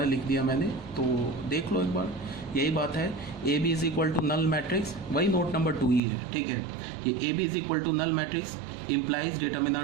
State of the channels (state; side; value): drops out; left; at 6.0 s